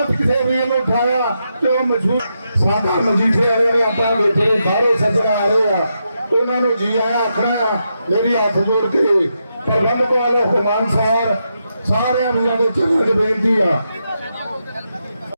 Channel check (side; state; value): both; inverted; correlation -0.84